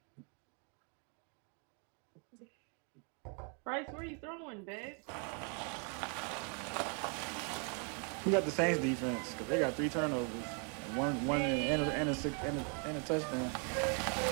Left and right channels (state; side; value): quieter; left; 38.8 dB